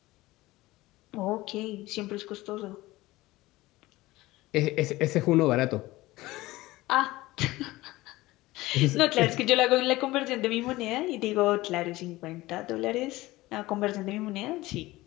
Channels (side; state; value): right; quieter; 18.8 dB